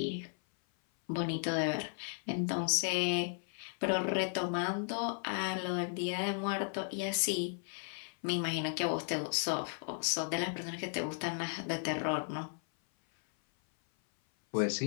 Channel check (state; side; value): silent; right; 54 dB below the other